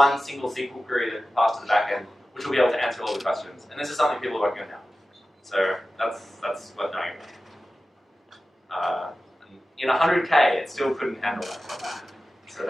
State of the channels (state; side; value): normal; both; correlation 0.95